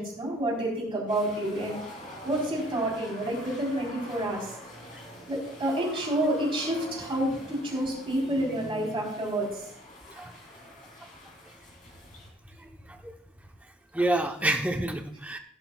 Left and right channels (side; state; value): both; normal; correlation 0.59